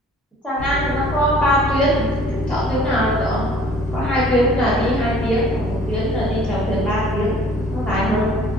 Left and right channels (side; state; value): both; normal; correlation 0.53